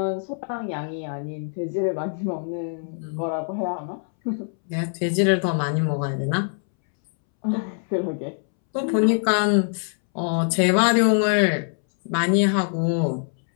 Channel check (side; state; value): right; silent; 63 dB below the other